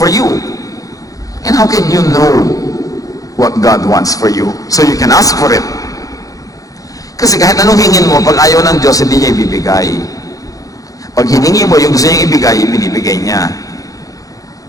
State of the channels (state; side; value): late; right; 0.17 ms